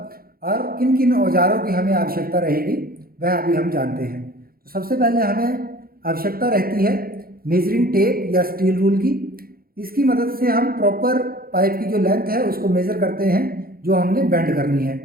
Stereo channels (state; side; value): late; left; 0.43 ms